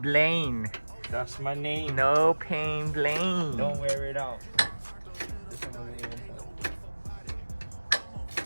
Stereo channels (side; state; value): both; inverted; correlation -1.00